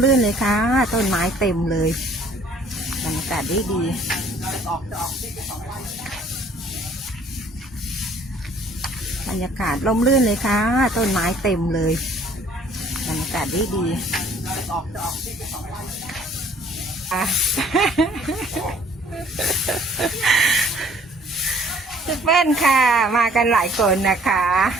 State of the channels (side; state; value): both; normal; correlation 0.57